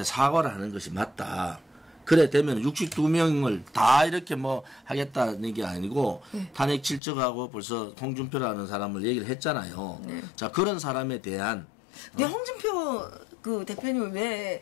사과를 하는 것이 맞다. 그래 되면 62명을 다 이렇게 뭐 하겠다는 게 아니고 탄핵 실적하고 벌써 홍준표라는 사람을 얘기를 했잖아요. 자, 그런 사람에 대한 근데 홍준표 그 대표님은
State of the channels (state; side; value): drops out; right; at 7.0 s